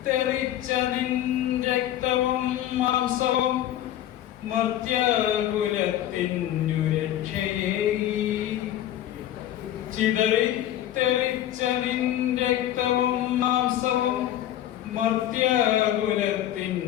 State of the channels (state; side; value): quieter; right; 12.3 dB